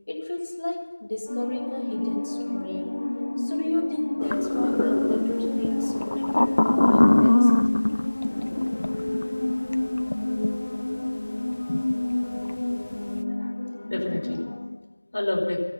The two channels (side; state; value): both; inverted; correlation -1.00